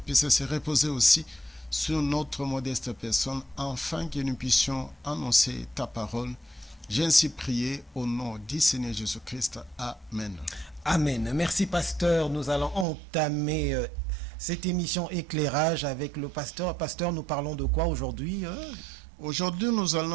puisse se reposer aussi sur notre modeste personne, afin que nous puissions annoncer ta parole. J'ai ainsi prié au nom du Seigneur Jésus-Christ. Amen. Amen. Merci, pasteur. Nous allons entamer cette émission Éclairage avec le pasteur. Pasteur, nous parlons de quoi aujourd'hui? Aujourd'hui, nous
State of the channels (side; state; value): left; drops out; at 12.9 s